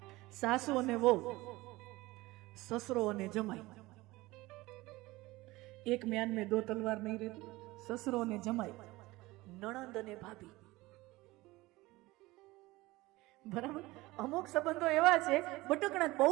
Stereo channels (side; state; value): left; quieter; 20.1 dB